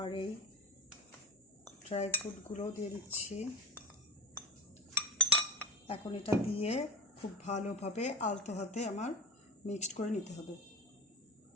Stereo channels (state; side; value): normal; both; correlation 0.23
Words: এই ড্রাই ফ্রুটগুলো দিয়ে দিচ্ছি। এখন এটা দিয়ে খুব ভালোভাবে আলতো হাতে আমার মিক্সড করে নিতে হবে।